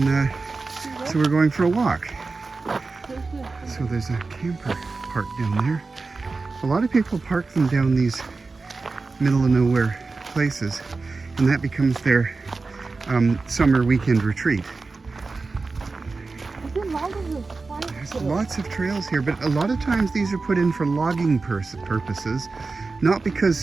so we're going for a walk. So there's a camper parked down there. A lot of people park them down these middle of nowhere places, and that becomes their summer weekend retreat. There's lots of trails here, but a lot of times these are put in for logging purposes, not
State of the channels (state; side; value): quieter; left; 3.9 dB